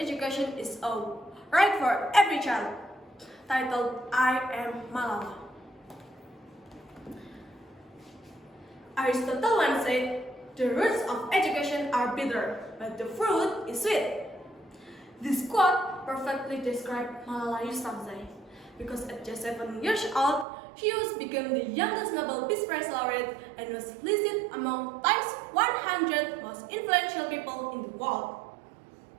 is a right for every child, titled "I Am Malala." Aristotle once said, "The roots of education are bitter, but the fruit is sweet." This quote perfectly describes Malala Yousafzai, because at just 7 years old, she became the youngest Nobel Peace Prize laureate and was listed among Time's 100 100 most influential people in the world.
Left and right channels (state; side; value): drops out; left; at 20.5 s